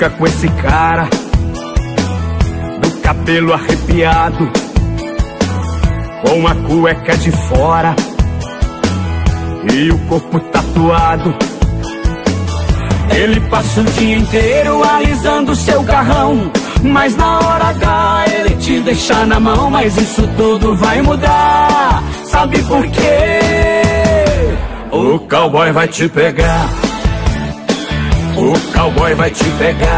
com esse cara, do cabelo arrepiado, com a cueca de fora e o corpo tatuado. Ele passa o dia inteiro alisando seu carrão, mas na hora H ele te deixa na mão. Mas isso tudo vai mudar, sabe por quê? O cowboy vai te pegar. O cowboy vai te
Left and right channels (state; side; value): identical; both; correlation 1.00